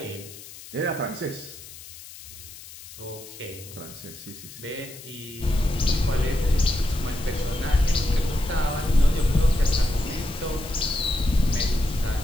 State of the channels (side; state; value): left; noise; hiss, 16 dB below the sound